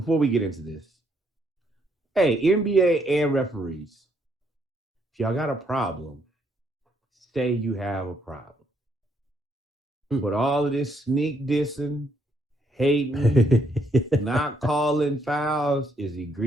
we get into this. Hey, NBA and referees, if y'all got a problem, say you have a problem. But all of this sneak dissing, hating, not calling fouls is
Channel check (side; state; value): both; normal; correlation 0.72